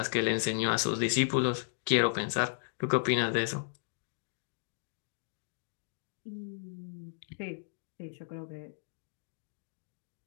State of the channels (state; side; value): silent; right; digital silence